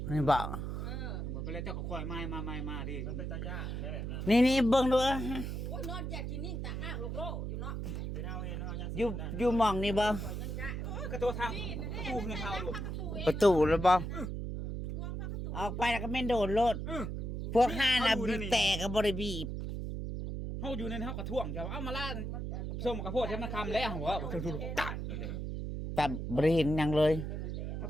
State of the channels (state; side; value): noise; right; hum, 4 dB below the sound